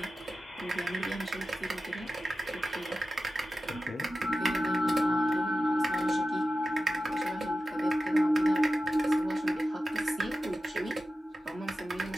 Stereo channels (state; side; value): normal; both; correlation 0.93